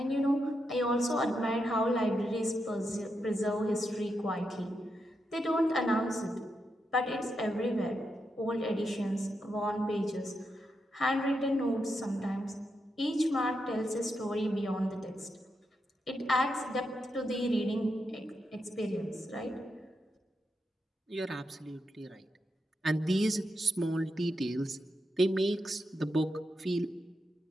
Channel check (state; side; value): normal; both; correlation 0.84